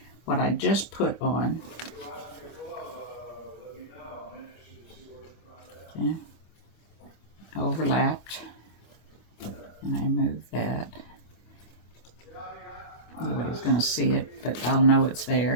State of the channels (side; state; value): right; late; 25 ms